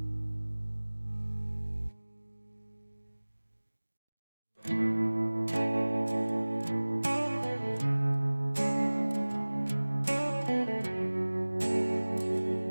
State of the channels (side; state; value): both; inverted; correlation -1.00